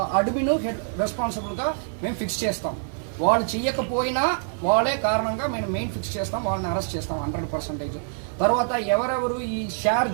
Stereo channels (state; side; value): silent; left; 56 dB below the other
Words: అడ్మిన్ హెడ్ రెస్పాన్సిబుల్గా మేము ఫిక్స్ చేస్తాం. వాళ్ళు చేయకపోయినా వాళ్ళే కారణంగా మేము మెయిన్ ఫిక్స్ చేస్తాం, వాళ్ళని అరెస్ట్ చేస్తాం 100%. తర్వాత ఎవరెవరు ఈ షేర్